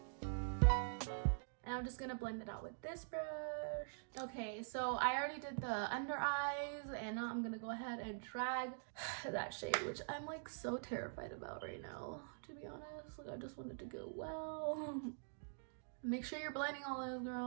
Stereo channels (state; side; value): silent; left; digital silence